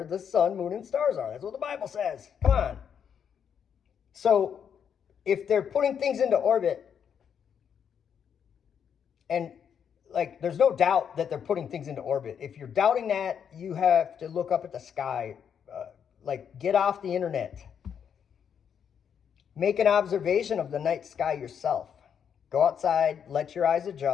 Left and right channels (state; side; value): quieter; right; 7.8 dB